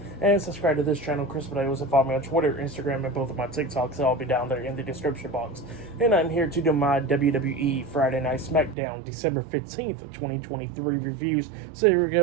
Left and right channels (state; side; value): drops out; left; at 8.8 s